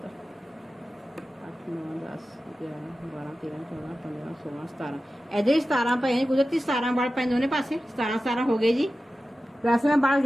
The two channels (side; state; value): both; normal; correlation 0.94